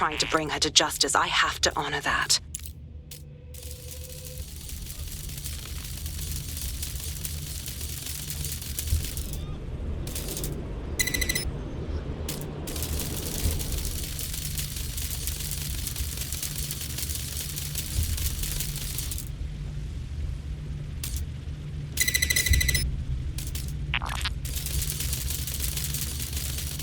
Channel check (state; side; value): identical; both; correlation 1.00